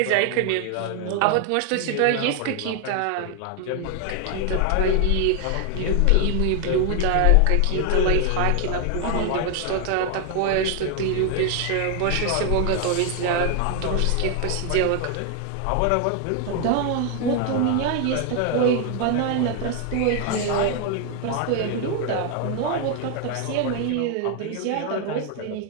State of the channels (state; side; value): different; both; correlation 0.00